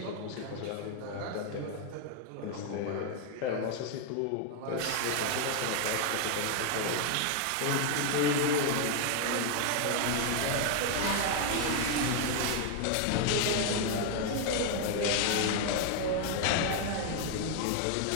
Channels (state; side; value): different; both; correlation 0.00